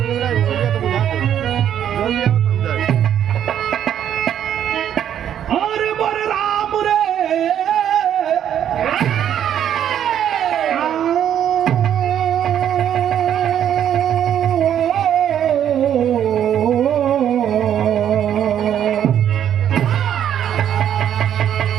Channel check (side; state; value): left; quieter; 9.9 dB